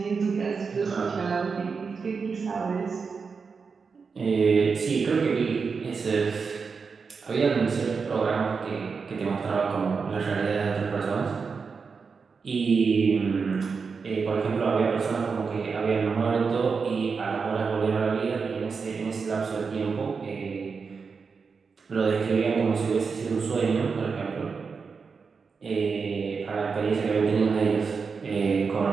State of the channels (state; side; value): quieter; left; 5.2 dB